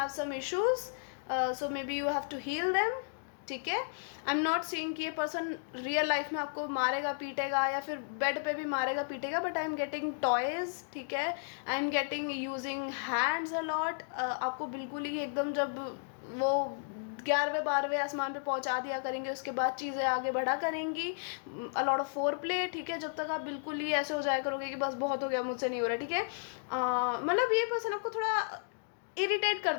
some issues, so maybe you have to heal them, ठीक है. आई एम नॉट सीइंग कि ये पर्सन रियल लाइफ में आपको मारेगा पीटेगा या फिर बेड पे भी मारेगा पीटेगा, but I am getting toys, ठीक है. I am getting using hands a lot. आपको बिल्कुल ही एकदम जब वो 11वें 12वें आसमान पे पहुंचा दिया करेंगे, उसके बाद चीज़ें आगे बढ़ा करेंगी, अ लॉट ऑफ फोर प्ले, ठीक है, जब तक आप बिल्कुल ही ऐसे हो जाया करोगे कि बस बहुत हो गया, मुझसे नहीं हो रहा, ठीक है। मतलब ये पर्सन आपको थोड़ा इरिटेट कर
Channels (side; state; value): right; silent; digital silence